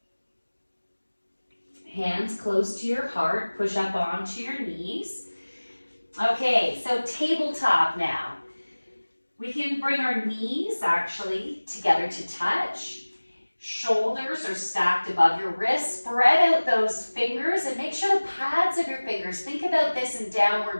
Hands close to your heart, push up onto your knees. Okay, so tabletop now. We can bring our knees actually together to touch. Shoulders are stacked above your wrists. Spread out those fingers and make sure the pads of your fingers, think about this in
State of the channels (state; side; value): inverted; both; correlation -1.00